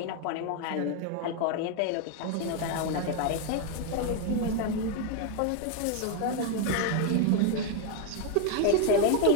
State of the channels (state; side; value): different; both; correlation 0.01